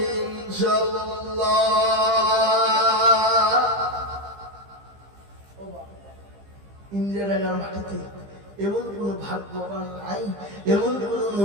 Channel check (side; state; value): left; late; 15 ms